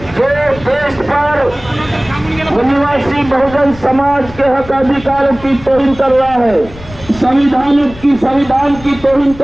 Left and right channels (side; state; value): left; noise; rumble, 17 dB below the sound